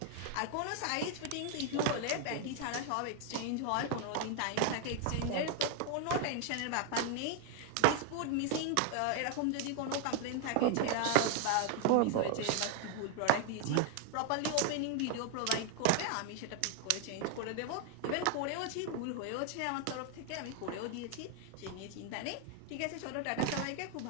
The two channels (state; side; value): different; both; correlation 0.01